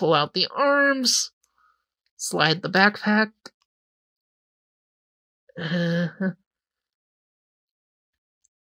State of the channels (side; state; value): both; identical; correlation 1.00